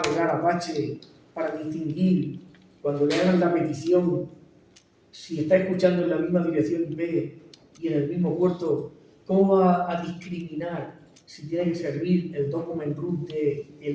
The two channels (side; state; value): both; identical; correlation 1.00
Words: Apache para distinguir cuando le hagan la petición si está escuchando en la misma dirección IP y en el mismo puerto? ¿Cómo va a discriminar si tiene que servir el document root de